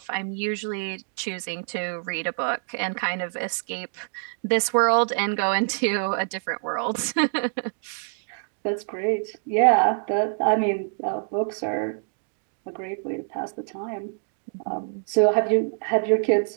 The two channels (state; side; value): silent; left; digital silence